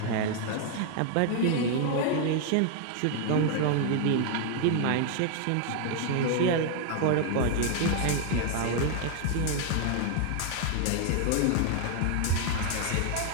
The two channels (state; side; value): different; both; correlation 0.00